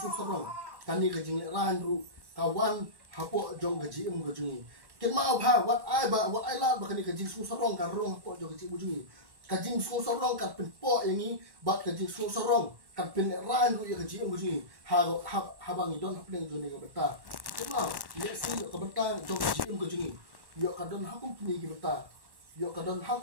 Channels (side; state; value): left; late; 1.1 ms